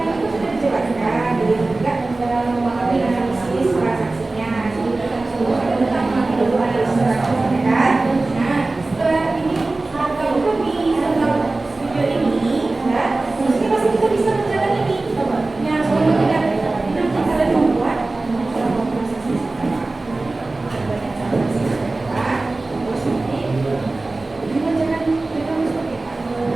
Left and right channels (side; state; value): left; quieter; 3.2 dB